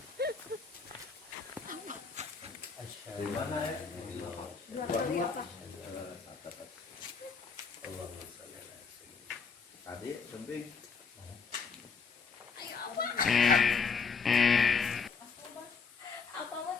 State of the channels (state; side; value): quieter; right; 5.3 dB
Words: Gimana ya? Tadi kembing. Apa mah